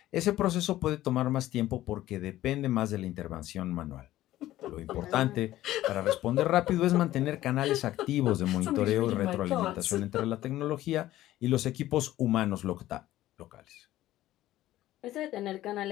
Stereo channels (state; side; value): quieter; right; 14.7 dB